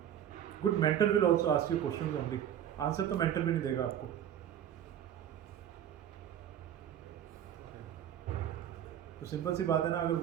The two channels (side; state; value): left; quieter; 10.2 dB